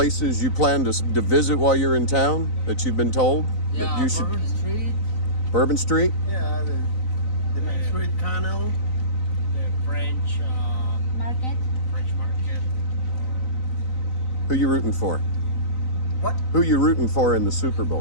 you plan to visit while you're in town that you've been told that you should? Bourbon Street. Bourbon Street. Yeah, the Main Street Canal. The French Market. French market. Who you rooting for? What? Who you rooting for in the Super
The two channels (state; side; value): late; right; 4.0 ms